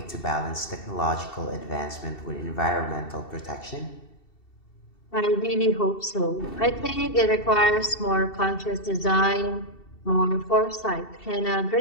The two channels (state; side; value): late; right; 2.7 ms